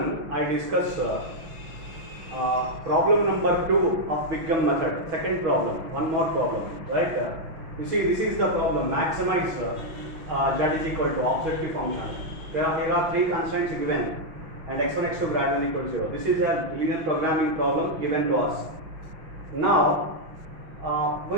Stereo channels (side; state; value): left; late; 6.1 ms